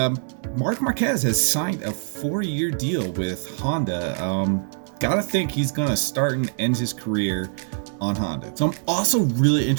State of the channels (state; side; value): silent; left; 61 dB below the other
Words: Marc Marquez has signed a 4-year deal with Honda. Gotta think he's gonna start and end his career on Honda. So I'm also really